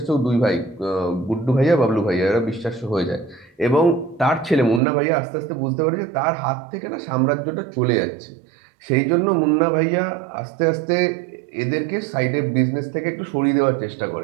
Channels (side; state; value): left; drops out; at 4.8 s